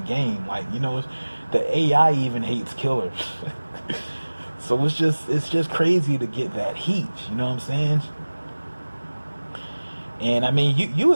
Like, the AI even hates Killer. So it's just crazy to get that heat. You know what I'm saying? And I mean, you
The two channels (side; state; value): both; inverted; correlation -1.00